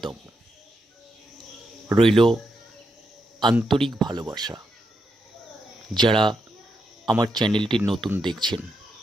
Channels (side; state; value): both; normal; correlation 0.83